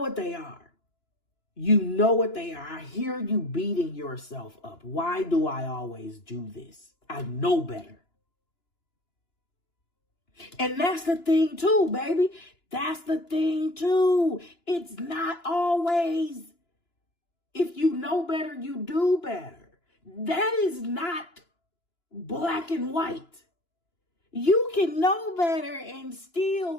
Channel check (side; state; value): right; late; 2.9 ms